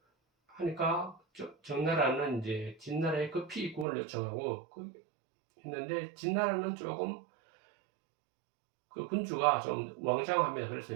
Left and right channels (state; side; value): drops out; left; at 3.9 s